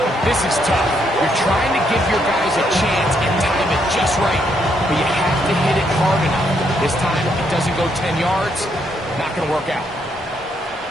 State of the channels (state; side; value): normal; both; correlation 0.74